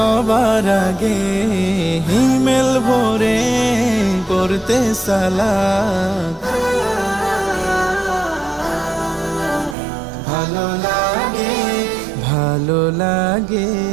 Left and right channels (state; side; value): drops out; left; at 9.8 s